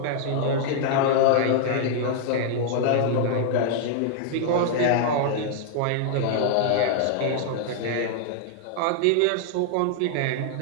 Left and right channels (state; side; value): different; both; correlation 0.00